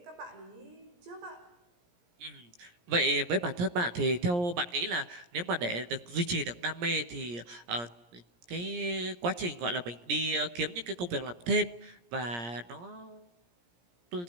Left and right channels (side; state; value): left; late; 17 ms